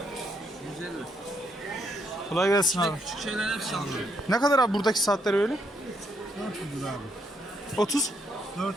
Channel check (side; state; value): both; normal; correlation 0.75